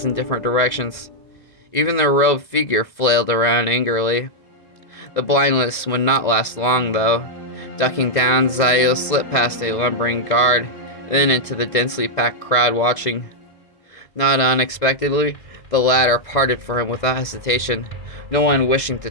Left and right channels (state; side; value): late; right; 2.0 ms